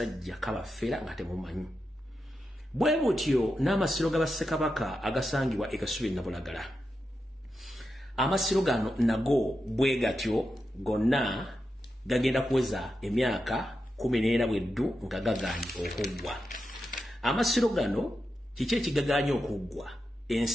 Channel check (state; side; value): normal; both; correlation 0.88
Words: kabafera nga temumanyi bwe butyo n'amasiro g'abassekabaka agasangibwa ekasubi Nabulagala amasiro gano nago bwe gatyo gonna gagenda kuweza emyaka 14 bweddu nga gaganye okuggwa amasiro gano kiki ekigaganye okuggwa